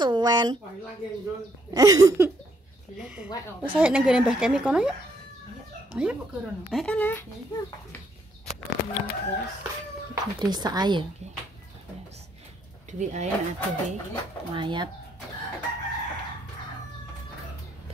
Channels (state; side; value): normal; both; correlation 0.71